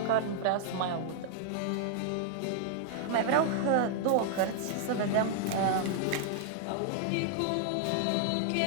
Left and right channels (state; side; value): different; both; correlation -0.01